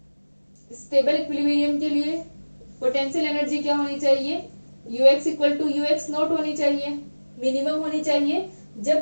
स्टेबल इक्विलिब्रियम के लिए पोटेंशियल एनर्जी क्या होनी चाहिए, ux equal to ux naught होनी चाहिए, मिनिमम होनी चाहिए। जब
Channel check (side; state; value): both; inverted; correlation -1.00